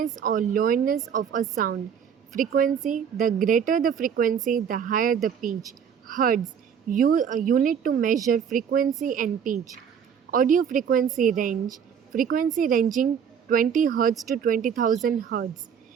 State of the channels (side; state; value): left; quieter; 7.6 dB